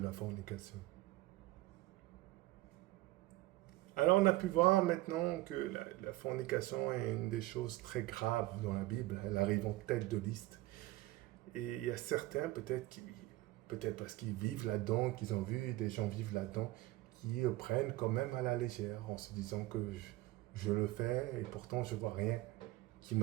fornication. Alors on a pu voir maintenant que la fornication est une des choses très graves dans la Bible. Elle arrive en tête de liste. Et il y a certains peut-être parce qu'ils vivent là-dedans, qu'ils ont vu des gens vivre là-dedans, qui prennent quand même à la légère en se disant que je le fais et pourtant je vois rien qui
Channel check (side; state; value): left; quieter; 18.2 dB